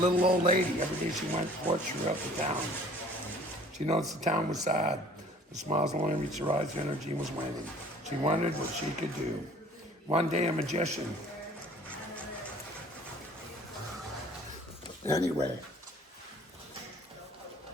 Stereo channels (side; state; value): both; normal; correlation 0.52